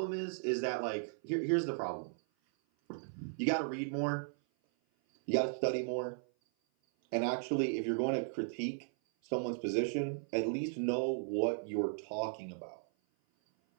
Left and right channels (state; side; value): silent; left; 54 dB below the other